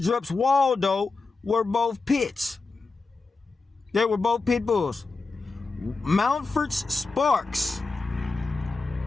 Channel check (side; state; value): right; quieter; 3.9 dB